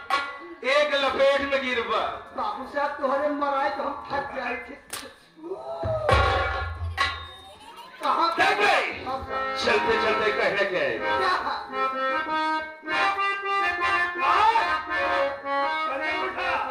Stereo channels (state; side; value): identical; both; correlation 1.00